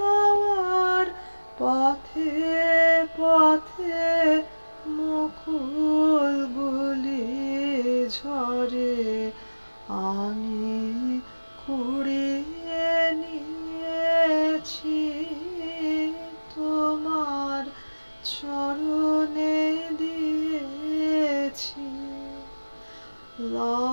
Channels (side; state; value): both; inverted; correlation -1.00